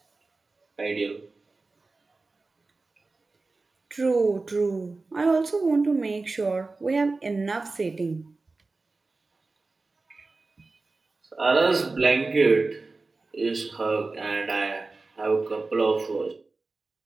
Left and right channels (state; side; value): quieter; left; 3.6 dB